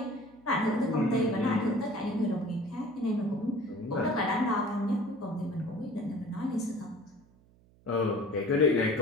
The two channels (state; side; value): noise; right; hum, 29 dB below the sound